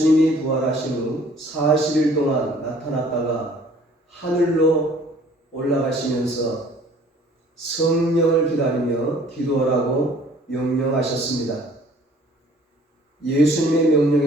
부활하신 후 40일 동안 나타났다가 하늘로 올라가시면서 성령을 기다리며 기도하라고 명령하셨습니다. 예수님의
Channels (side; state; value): both; normal; correlation 0.55